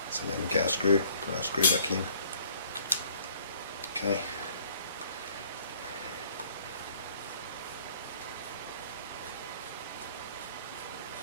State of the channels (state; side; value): inverted; both; correlation -0.57